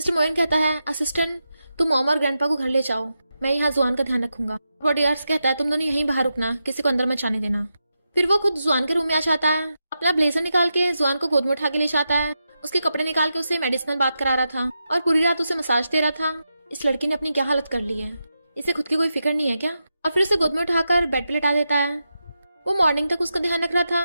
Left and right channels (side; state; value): both; inverted; correlation -0.88